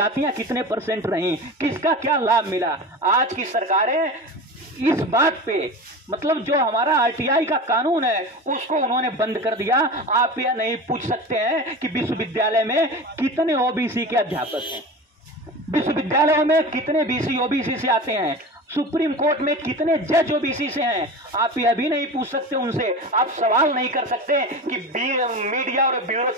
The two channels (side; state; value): both; normal; correlation 0.30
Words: कितने % रहीं, किसका क्या लाभ मिला। आज की सरकारें इस बात पे, मतलब जो हमारा आरटीआई का कानून है उसको उन्होंने बंद कर दिया। आप यह नहीं पूछ सकते हैं कि विश्वविद्यालय में कितने ओबीसी के अध्यापक हैं, विश्वविद्यालयों में कितने बीसी ओबीसी से आते हैं। सुप्रीम कोर्ट में कितने जज ओबीसी से हैं, आप यह भी नहीं पूछ सकते उनसे, आप सवाल नहीं कर सकते कि मीडिया और